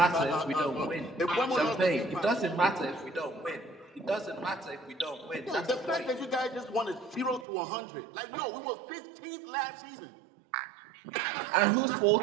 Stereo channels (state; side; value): drops out; left; at 7.5 s